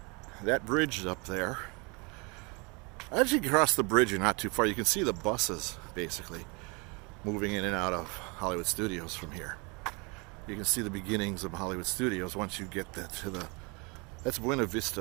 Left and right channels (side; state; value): left; quieter; 30.0 dB